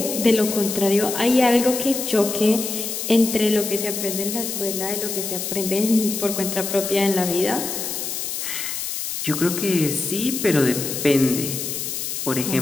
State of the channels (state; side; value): noise; left; hiss, 4 dB below the sound